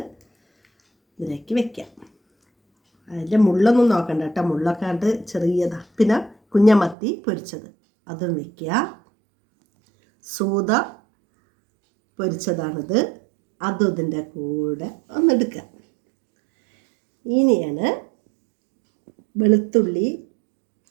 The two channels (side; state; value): left; drops out; at 7.0 s